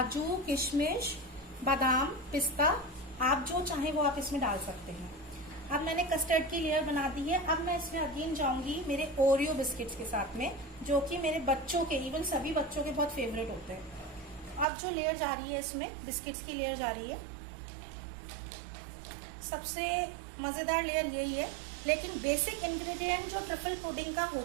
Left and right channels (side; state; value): left; drops out; at 14.7 s